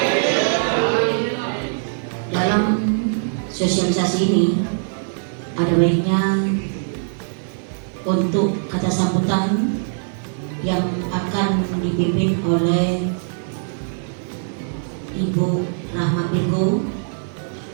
Dalam sosialisasi ini ada baiknya untuk kata sambutan yang akan dipimpin oleh Ibu Rahma Pirgo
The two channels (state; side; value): silent; left; digital silence